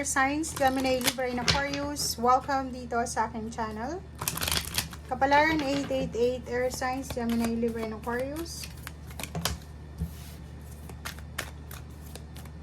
Signs, Gemini, Libra, and Aquarius. Welcome dito sa aking channel. Kapalaran 888 Earth Signs, Gemini, Libra, and Aquarius.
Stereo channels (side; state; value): both; identical; correlation 1.00